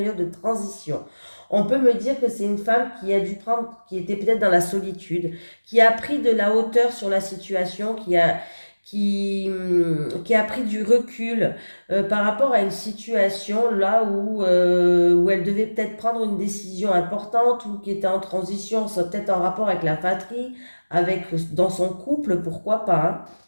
de transition. On peut me dire que c'est une femme qui a dû prendre, qui était peut-être dans la solitude, qui a pris de la hauteur sur la situation, qui a pris du recul par rapport à une situation là où elle devait peut-être prendre une décision importante ou qui était en transition, ça peut-être en rapport avec la fratrie, dans son couple, pourquoi pas. Hein.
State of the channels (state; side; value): inverted; both; correlation -1.00